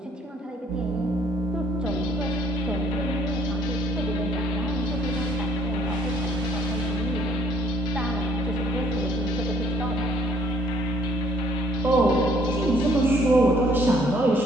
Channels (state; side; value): normal; both; correlation 0.64